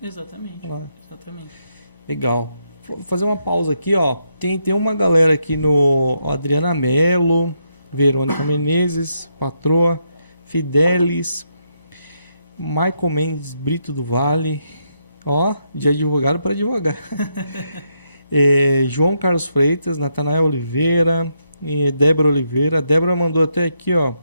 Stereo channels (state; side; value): inverted; both; correlation -0.80